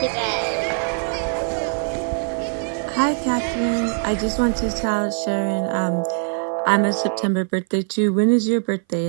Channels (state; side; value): silent; left; 60 dB below the other